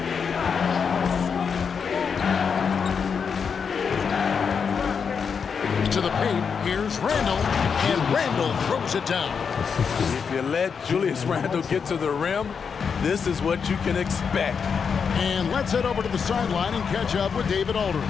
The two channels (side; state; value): right; quieter; 6.2 dB